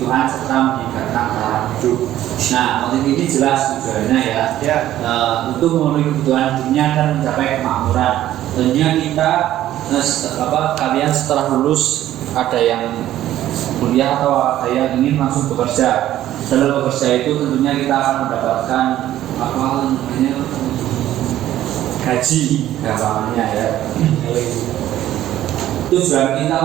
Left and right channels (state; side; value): quieter; left; 13.1 dB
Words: serta meningkatkan taraf hidup. Nah, motif ini jelas tujuannya ya. Untuk memenuhi kebutuhan dunia dan mencapai kemakmuran. Tentunya kita kalian setelah lulus ada yang kuliah atau ada yang ingin langsung bekerja. Dalam bekerja itu tentunya kita akan mendapatkan gaji gampangnya ya. Tujuan kita